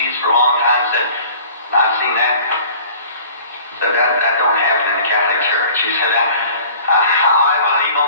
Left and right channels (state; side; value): inverted; both; correlation -0.47